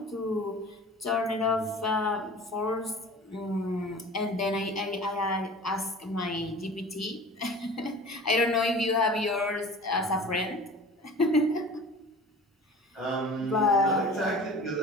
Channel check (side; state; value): both; normal; correlation 0.41